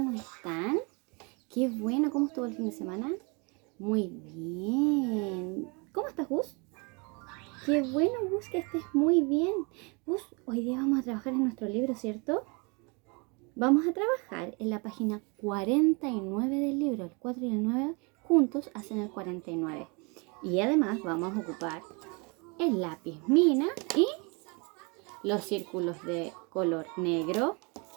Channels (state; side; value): quieter; left; 31.2 dB